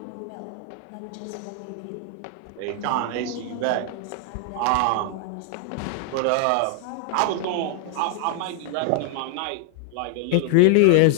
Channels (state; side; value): different; both; correlation 0.00